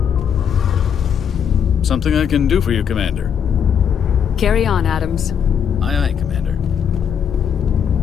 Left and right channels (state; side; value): quieter; right; 8.0 dB